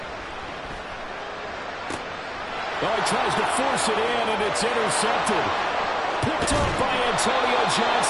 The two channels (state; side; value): identical; both; correlation 1.00